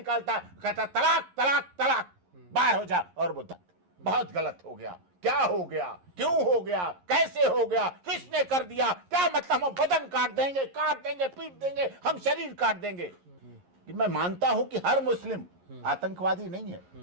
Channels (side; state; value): left; late; 11 ms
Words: कहता तलाक तलाक तलाक, बाहर हो जा। और वो बहुत गलत हो गया, क्या हो गया, क्यों हो गया, कैसे हो गया, किसने कर दिया, क्या मतलब, हम बदन काट देंगे, पीट देंगे, हम शरीर काट देंगे। कि मैं मानता हूं कि हर मुस्लिम आतंकवादी नहीं है,